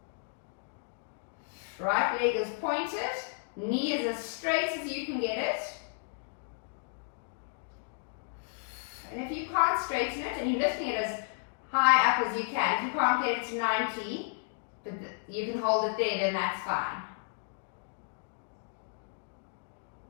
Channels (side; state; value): right; silent; digital silence